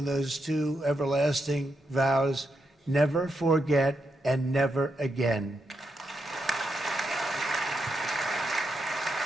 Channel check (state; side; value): normal; both; correlation 0.83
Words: those two everlasting vows: never forget and never again.